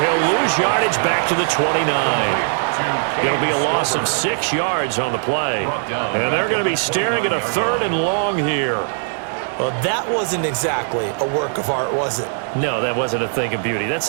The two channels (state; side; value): silent; left; digital silence